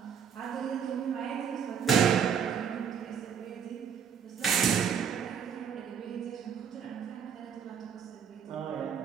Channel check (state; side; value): quieter; left; 7.7 dB